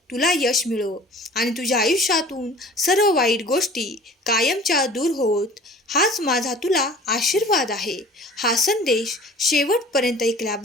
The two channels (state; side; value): normal; both; correlation 0.45